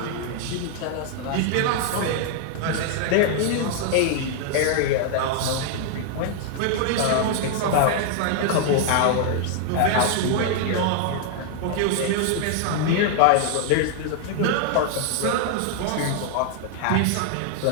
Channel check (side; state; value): both; different; correlation 0.00